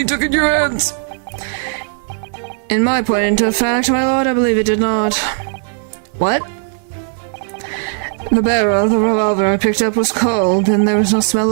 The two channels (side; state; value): left; silent; digital silence